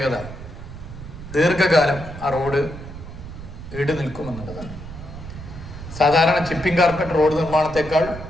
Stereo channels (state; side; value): noise; right; rumble, 12 dB below the sound